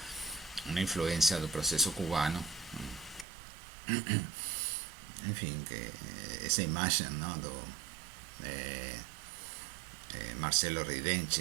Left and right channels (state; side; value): drops out; left; at 3.2 s